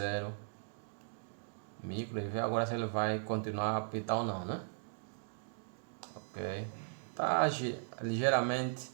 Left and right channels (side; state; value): left; silent; digital silence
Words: micro e ver agora se ele vai continuar a apitar ou não, né? Ok, tá ligeiramente,